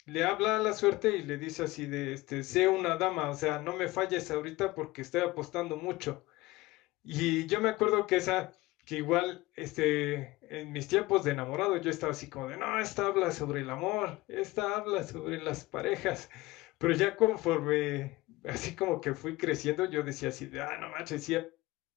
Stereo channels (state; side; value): quieter; right; 19.9 dB